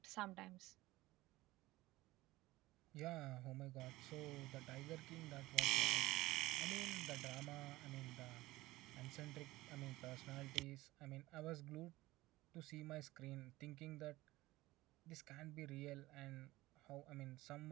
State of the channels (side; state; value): left; quieter; 18.5 dB